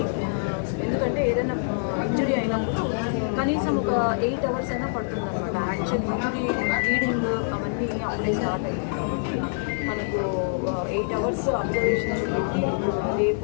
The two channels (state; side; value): silent; right; digital silence